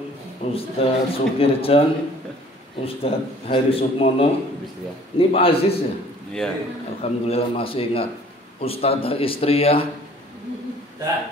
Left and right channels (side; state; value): both; normal; correlation 0.53